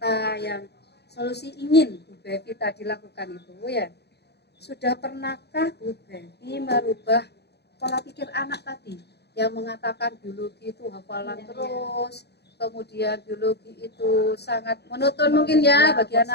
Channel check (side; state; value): right; late; 0.48 ms